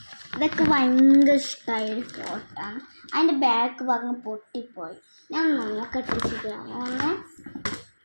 ഇതൊക്കെ ഭയങ്കര ഇഷ്ടമായൊരു ഫോട്ടോ ആണ്. അതിൻ്റെ ബാക്ക് ഭാഗം പൊട്ടിപ്പോയി. ഞാൻ നോക്കട്ടെ ശരിയാവുമെന്ന്.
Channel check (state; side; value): inverted; both; correlation -1.00